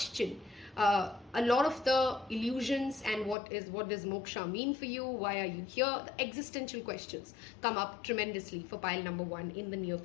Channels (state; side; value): drops out; right; at 3.4 s